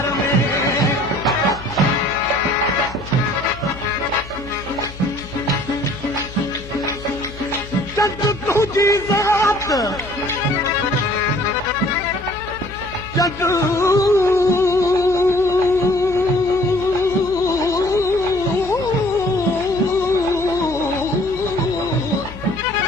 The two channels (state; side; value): noise; left; hum, 15 dB below the sound